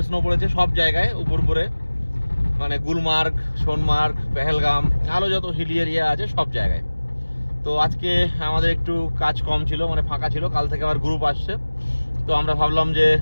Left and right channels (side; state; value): both; inverted; correlation -1.00